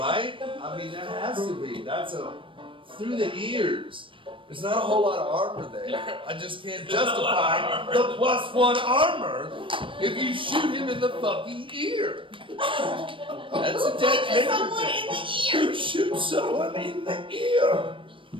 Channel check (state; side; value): late; left; 0.25 ms